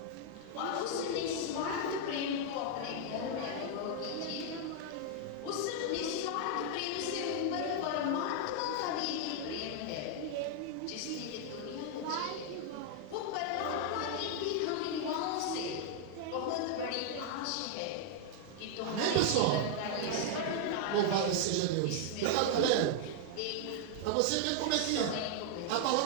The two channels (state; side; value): different; both; correlation 0.00